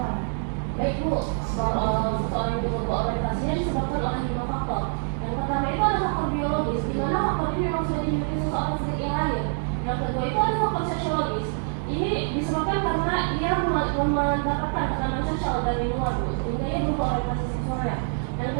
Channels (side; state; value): left; silent; 61 dB below the other